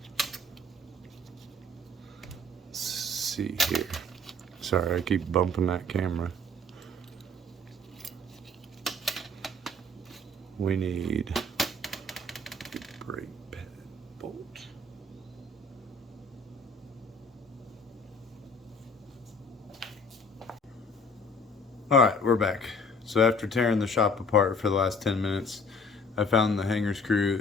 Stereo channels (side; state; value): both; normal; correlation 0.52